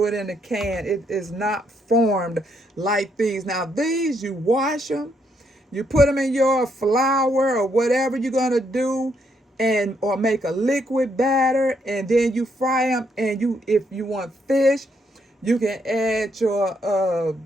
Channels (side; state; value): both; normal; correlation 0.75